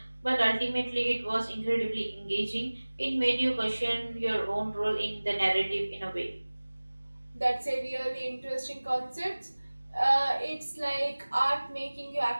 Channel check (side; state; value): both; inverted; correlation -1.00